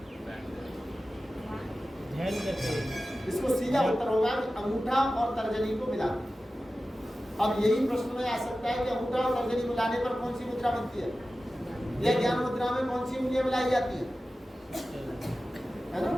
ध्यान करते हैं। इसको सीधा उत्तर होगा कि अंगूठा और तर्जनी को मिला। अब यही प्रश्न में आ सकता है कि अंगूठा और तर्जनी मिलाने पर कौन सी मुद्रा बनती है, या ज्ञान मुद्रा में कौन सी उंगलियां मिलाई जाती है? है ना?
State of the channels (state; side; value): normal; both; correlation 0.95